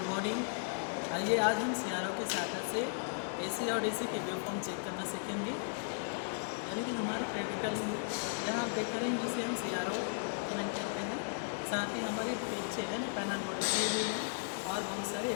morning. आइए आज हम सियारों के सहायता से एसी और डीसी के वेव फॉर्म चेक करना सीखेंगे। यानी कि हमारे प्रैक्टिकल यहाँ आप देख रहे हैं जिसे हम सियारों कमेंट करते हैं। साथ ही हमारे पीछे है पैनल बोर्ड लगे हुए हैं और बहुत सारे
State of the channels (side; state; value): right; silent; 54 dB below the other